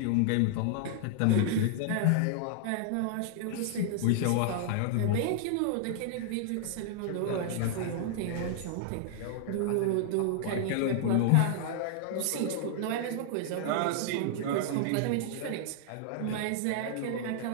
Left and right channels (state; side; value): different; both; correlation -0.01